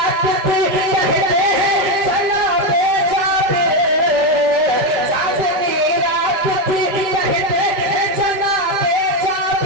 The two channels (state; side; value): late; left; 5.1 ms